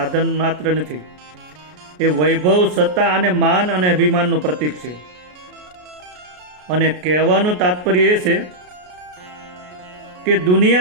માત્ર નથી, એ વૈભવ, સત્તા અને માન અને અભિમાનનું પ્રતીક છે. અને કહેવાનું તાત્પર્ય એ છે કે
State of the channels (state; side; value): late; left; 33 ms